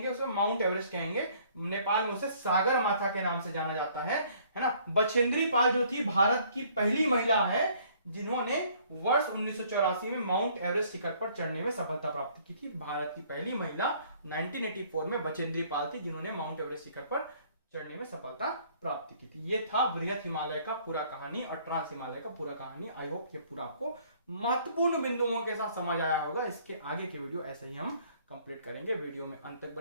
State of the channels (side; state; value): both; inverted; correlation -0.60